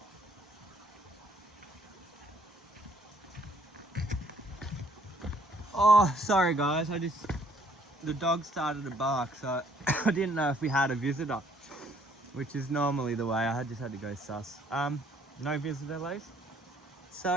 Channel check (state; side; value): normal; both; correlation 0.63